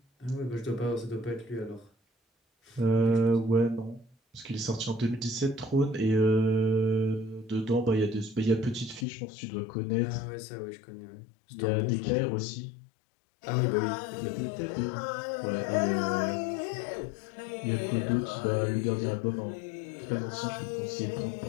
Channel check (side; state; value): right; drops out; at 9.1 s